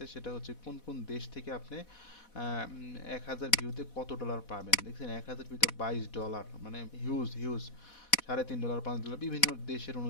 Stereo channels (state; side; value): late; right; 4.1 ms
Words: সেটা হচ্ছে কোন কোন দেশ থেকে আপনি 1000 ভিউতে কত ডলার পাবেন। দেখছেন 1000 ভিউতে $22, মানে হিউজ হিউজ। $3.5 $5 বিভিন্ন দেশের